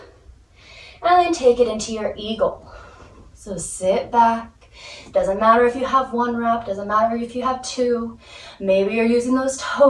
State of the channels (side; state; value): both; identical; correlation 1.00